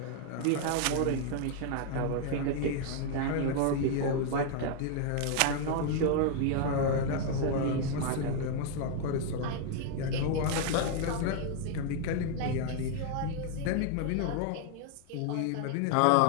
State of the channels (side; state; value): both; different; correlation 0.00